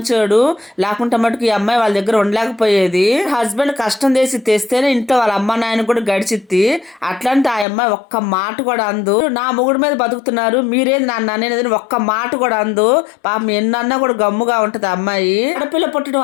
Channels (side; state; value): right; drops out; at 7.7 s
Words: లేకుంటే మటుకు ఈ అమ్మాయి వాళ్ళ దగ్గర ఉండలేకపోయేది. హస్బెండ్ కష్టం చేసి తెస్తేనే ఇంట్లో వాళ్ళ అమ్మ నాయన కూడా గడిచిద్ది. అట్లాంటి ఆ అమ్మాయి ఒక్క మాట కూడా అందు. నా మొగుడు మీద బతుకుతున్నారు, మీరేది నన్ను అనేది ఒక్క మాట కూడా అందు. పాపం ఎన్నన్నా కూడా గమ్ముగా ఉంటది అమ్మాయి. ఆడపిల్ల పుట్టడం